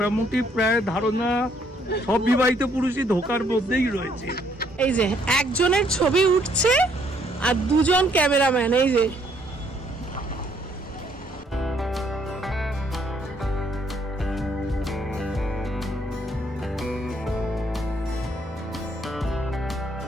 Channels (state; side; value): normal; both; correlation 0.68